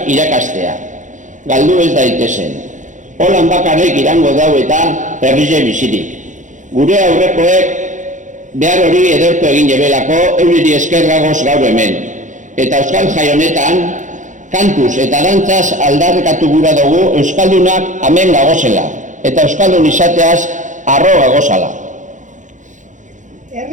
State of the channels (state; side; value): late; left; 0.36 ms